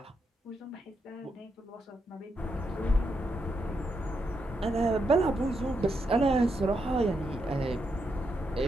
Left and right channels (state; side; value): normal; both; correlation 0.82